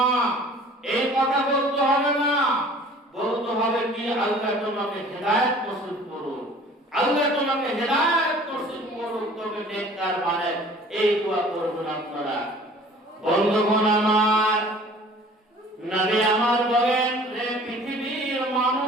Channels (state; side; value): normal; both; correlation 0.49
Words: এই কথা বলতে হবে না। বলতে হবে কি, আল্লাহ তোমাকে হেদায়েত নসিব করুন, আল্লাহ তোমাকে হেদায়েত নসিব করুন, তবে নেককার বানায়, এই দোয়া করবেন আপনারা। বন্ধুগণ আমার, নবী আমার বলেন, রে পৃথিবীর